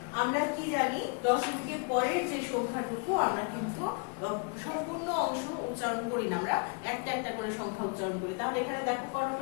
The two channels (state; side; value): quieter; right; 36.3 dB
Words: আমরা কি জানি, দশমিকের পরের যে সংখ্যাটুকু আমরা কিন্তু সম্পূর্ণ অংশ উচ্চারণ করি না, আমরা একটা একটা করে সংখ্যা উচ্চারণ করি। তাহলে এখানে দেখো কত